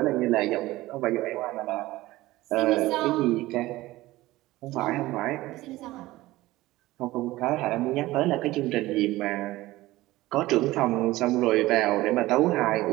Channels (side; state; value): left; quieter; 17.9 dB